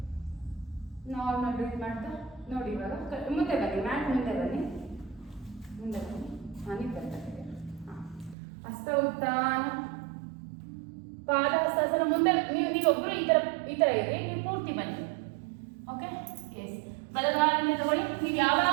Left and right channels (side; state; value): left; drops out; at 8.3 s